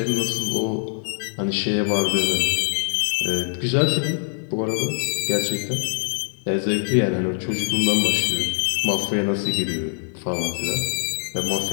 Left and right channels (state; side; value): silent; right; digital silence